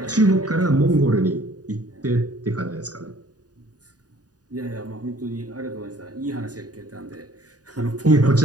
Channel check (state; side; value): late; left; 0.68 ms